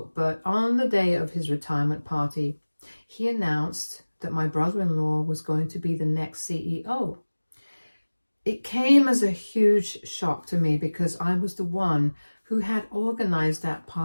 but on the day of his retirement party, he announced that my brother-in-law was going to be the next CEO. It came as a huge shock to me because I was the one who had organized that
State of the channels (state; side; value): inverted; both; correlation -1.00